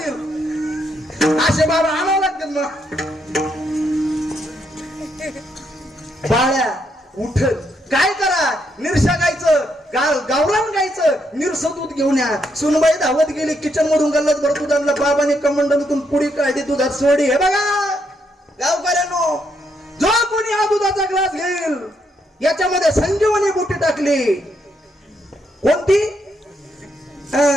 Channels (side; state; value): both; normal; correlation 0.77